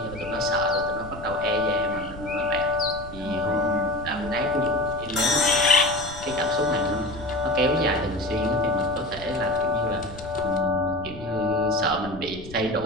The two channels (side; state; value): left; noise; rumble, 15 dB below the sound